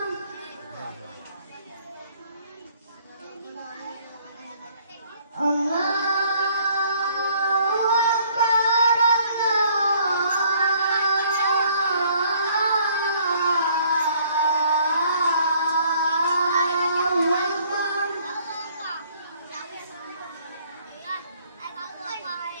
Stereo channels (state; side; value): inverted; both; correlation -0.61